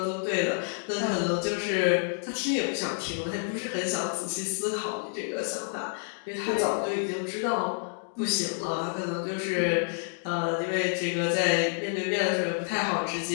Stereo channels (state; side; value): silent; right; 59 dB below the other